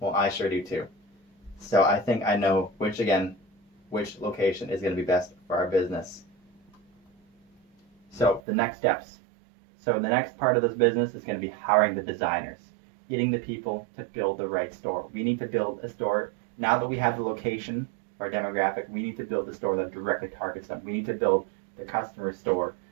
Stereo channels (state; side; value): drops out; left; at 8.4 s